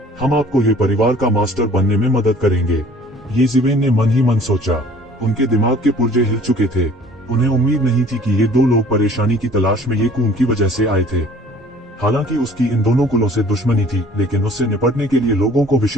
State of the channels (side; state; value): both; normal; correlation 0.51